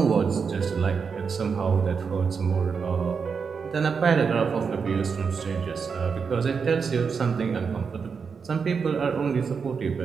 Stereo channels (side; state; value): left; quieter; 5.8 dB